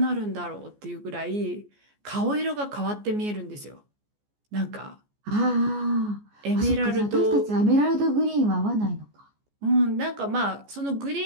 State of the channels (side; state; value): left; late; 14 ms